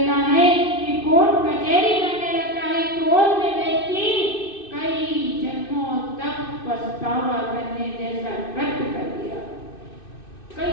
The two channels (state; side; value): late; right; 2.6 ms